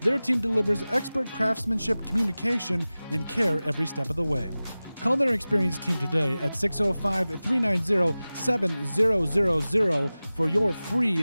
team delivers expert craftsmanship, communication, and care every step of the way. Call their experienced team today at 605-390-7000 for your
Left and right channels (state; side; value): inverted; both; correlation -0.97